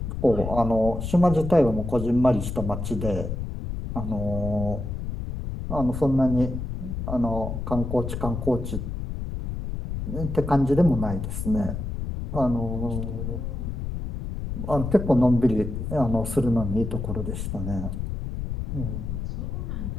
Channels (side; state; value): left; noise; rumble, 5 dB below the sound